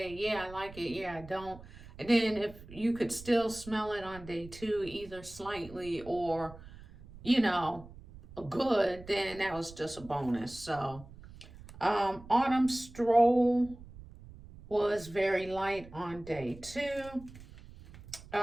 yeah, I like it, yeah, I don't. And then if you could still smell it on day 2, either slightly or, you know, good, then that was just a bonus. So Autumn Stroll was very light on day 2.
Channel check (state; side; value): noise; right; rumble, 18 dB below the sound